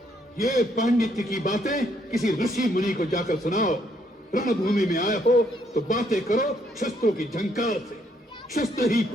ये पांडित्य की बातें किसी ऋषि मुनि को जाकर सुनाओ। रणभूमि में आए हो तो बातें करो शस्त्रों की झंकार से। शस्त्र ही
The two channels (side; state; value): both; normal; correlation 0.71